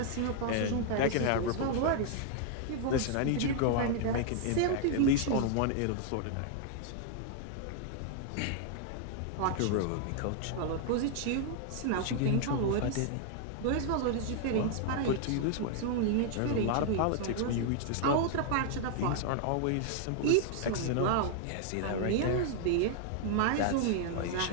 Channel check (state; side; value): different; both; correlation 0.00